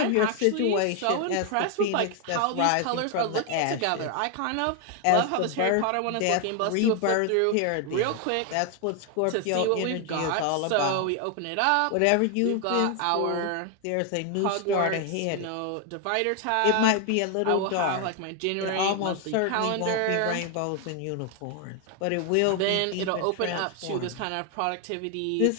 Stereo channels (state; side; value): different; both; correlation 0.01